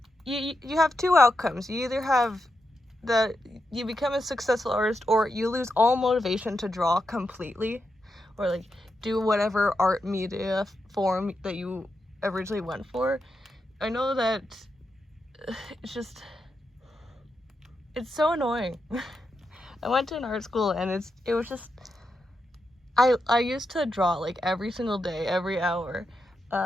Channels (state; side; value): normal; both; correlation 0.86